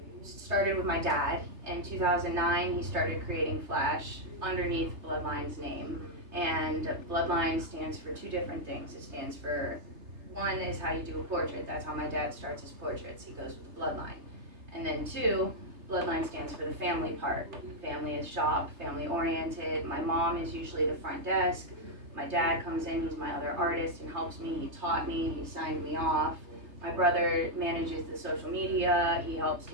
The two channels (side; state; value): left; late; 3.3 ms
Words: Started with my dad. In 2009, he started creating Flash underneath Bloodline's name. And Bloodline stands for two different things. It stands for, one is how you do a portrait. That's how my dad starts his portraits. He goes with the Bloodline. And then two, Bloodline stands for the family part. Family is shop, family oriented. My mom is usually the front desk. My dad comes in, he's my other artist and helps me. He taught me, he signed me off. My brother manages the social media. He helps